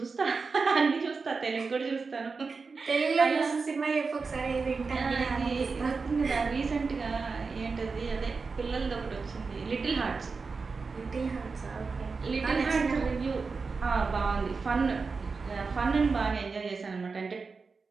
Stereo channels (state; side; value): quieter; left; 4.6 dB